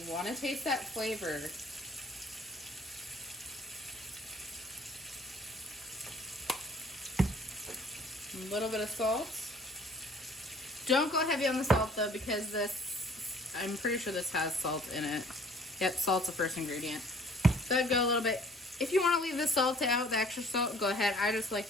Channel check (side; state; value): both; normal; correlation 0.54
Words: want to taste that flavor. A little bit of salt. Don't go heavy on the salt though, because this, I'm pretty sure this has salt in it. Yep, salt's the first ingredient. So I'd go a little bit. If you want to leave the salt out, the extra salt, go ahead. I just like